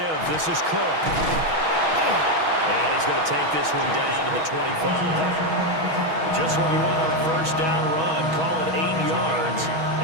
This is Cook. And he's going to take this one down to the 25. Just what you want on a first down run. Call it 8 yards.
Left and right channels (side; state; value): left; late; 6.2 ms